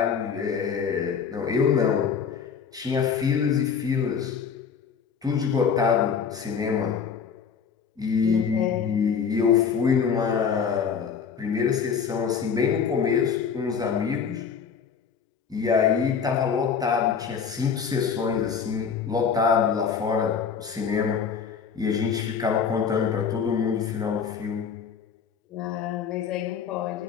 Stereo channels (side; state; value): right; quieter; 6.6 dB